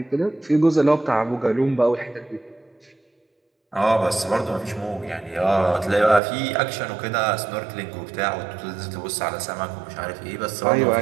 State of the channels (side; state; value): left; drops out; at 6.2 s